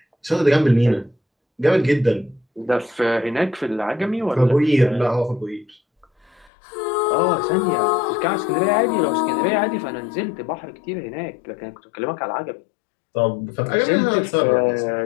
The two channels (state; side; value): drops out; right; at 6.5 s